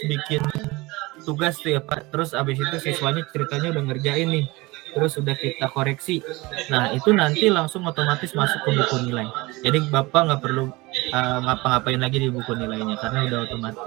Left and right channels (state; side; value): quieter; left; 22.5 dB